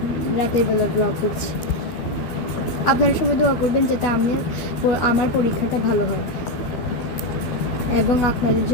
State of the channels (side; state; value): right; late; 12 ms